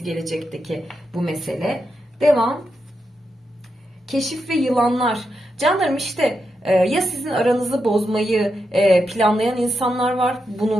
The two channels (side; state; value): both; normal; correlation 0.85